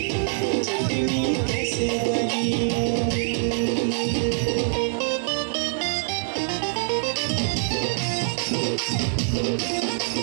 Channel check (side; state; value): left; silent; digital silence